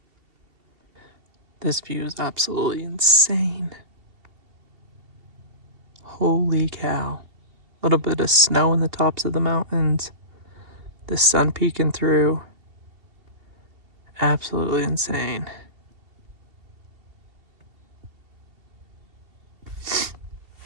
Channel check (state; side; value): late; left; 2.8 ms